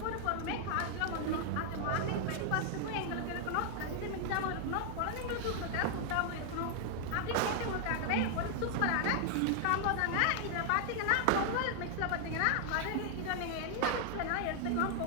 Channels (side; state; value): both; different; correlation 0.00